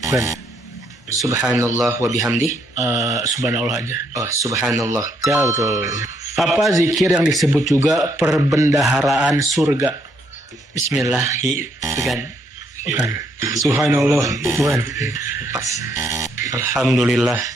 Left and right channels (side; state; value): both; normal; correlation 0.72